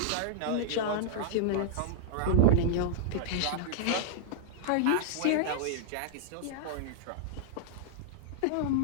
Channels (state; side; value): different; both; correlation -0.02